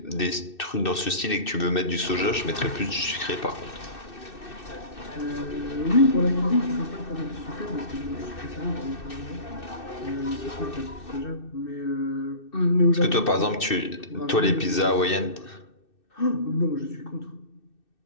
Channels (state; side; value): late; right; 2.6 ms